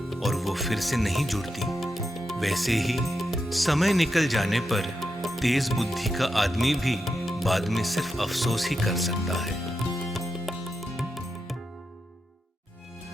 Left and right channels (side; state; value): both; normal; correlation 0.86